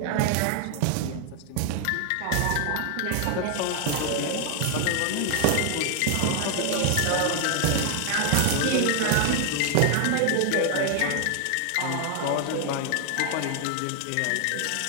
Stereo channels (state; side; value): different; both; correlation 0.00